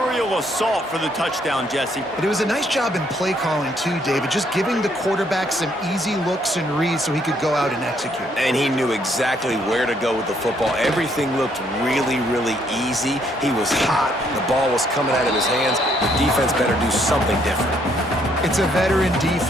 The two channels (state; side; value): normal; both; correlation 0.69